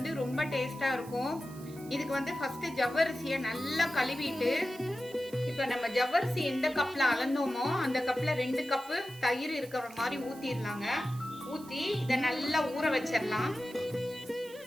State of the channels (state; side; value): noise; right; hiss, 20 dB below the sound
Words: ரொம்ப டேஸ்டா இருக்கும். இதுக்கு வந்து ஃபர்ஸ்ட் ஜவ்வரிசியை நல்லா கழுவிட்டு, இப்ப நம்ம ஜவ்வரிசி எந்த கப்ல அளந்தோமோ அந்த கப்ல 2 கப்பு தயிர் இருக்கிற மாதிரி ஊத்திடலாங்க. ஊத்தி இதை நல்லா ஊற வச்சிடலாம்.